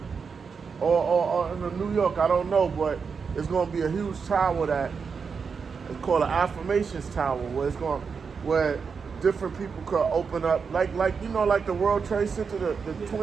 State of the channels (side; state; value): left; quieter; 5.7 dB